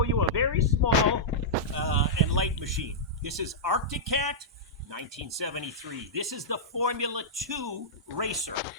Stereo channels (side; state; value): both; normal; correlation -0.11